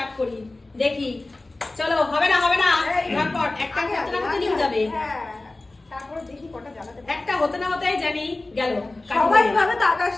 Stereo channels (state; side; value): quieter; right; 3.0 dB